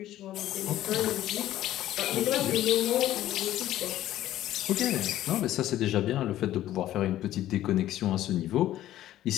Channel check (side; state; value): right; quieter; 13.5 dB